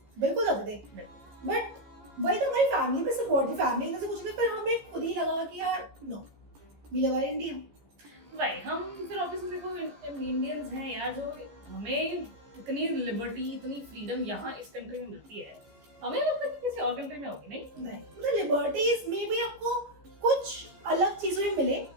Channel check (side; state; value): left; late; 14 ms